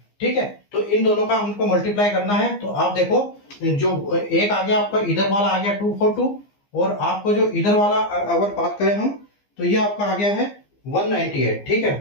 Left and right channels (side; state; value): right; late; 15 ms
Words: ठीक है। तो इन दोनों का हमको मल्टीप्लाई करना है, तो आप देखो जो एक आ गया आपका इधर वाला आ गया 242, और आपको जो इधर वाला अगर बात करें हम तो ये आपका आ गया है 198, ठीक